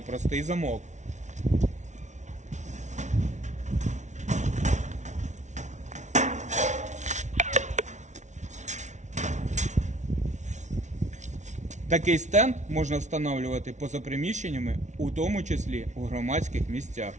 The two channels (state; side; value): late; left; 0.34 ms